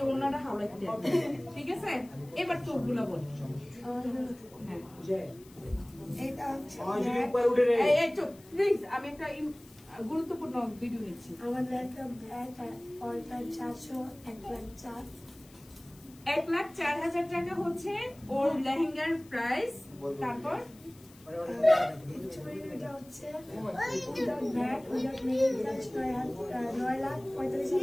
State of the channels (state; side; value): noise; left; hiss, 25 dB below the sound